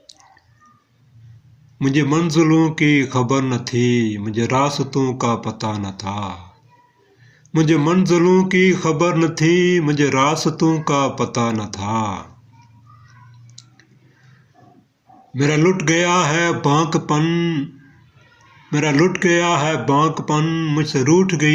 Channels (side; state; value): both; identical; correlation 1.00